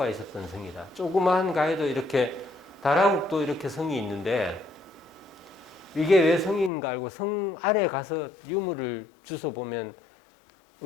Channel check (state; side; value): drops out; right; at 6.7 s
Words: 있었던 성이다. 조그마한 가야도 이렇게 다라국도 이렇게 성이 있는데 이게 왜 성인가 알고 성 아래 가서 유물을 주워 보면